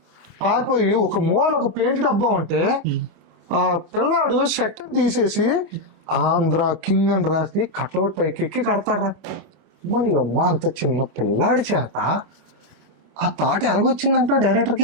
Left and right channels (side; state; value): left; late; 25 ms